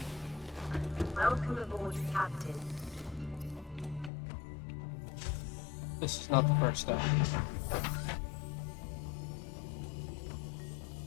Welcome aboard, Captain. This is not the first step.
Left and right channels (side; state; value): right; drops out; at 4.1 s